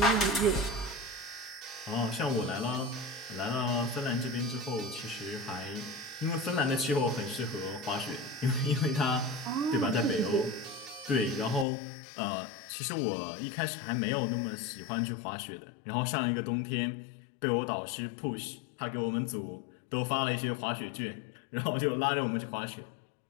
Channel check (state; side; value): drops out; right; at 11.7 s